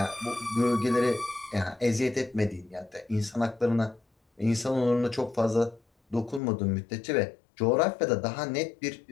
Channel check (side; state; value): right; drops out; at 6.4 s